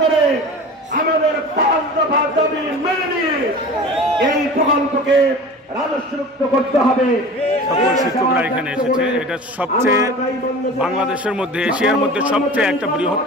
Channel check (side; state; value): both; normal; correlation 0.37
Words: আমাদের 5 দফা দাবি মেনে নিয়ে এই প্রকল্পকে রাজস্বমুক্ত করতে হবে। সকল শিক্ষকরা এখানে এসেছে। এটা সবচেয়ে বাংলাদেশের মধ্যে এশিয়ার মধ্যে সবচেয়ে একটা বৃহৎ